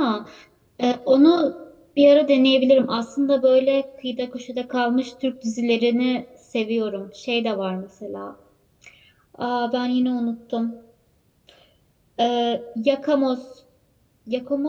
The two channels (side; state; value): both; identical; correlation 1.00